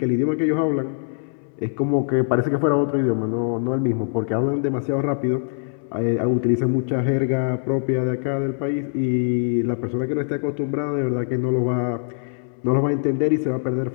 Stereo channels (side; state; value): right; silent; 64 dB below the other